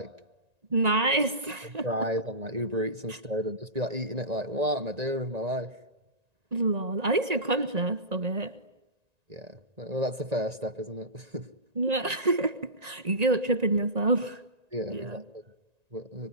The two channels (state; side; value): late; left; 1.9 ms